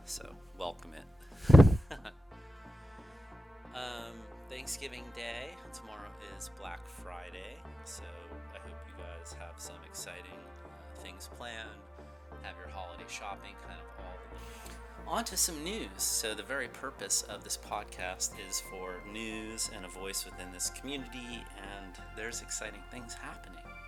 so welcome it. Thanksgiving Day. Tomorrow is Black Friday, so I hope you guys have some exciting things planned, have your holiday shopping, kind of all. On to some news. So the very purpose of this podcast is for news and a voice within this community, and there's exciting things happening.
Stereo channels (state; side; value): normal; both; correlation 0.94